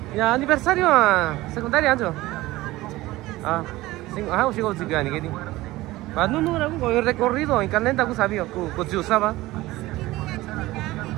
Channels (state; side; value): quieter; left; 18.3 dB